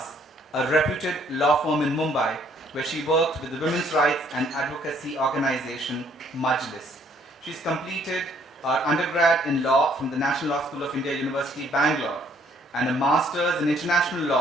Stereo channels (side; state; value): both; normal; correlation 0.64